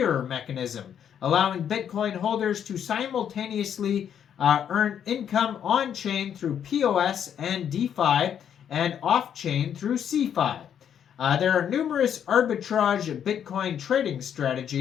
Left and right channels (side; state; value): right; quieter; 8.9 dB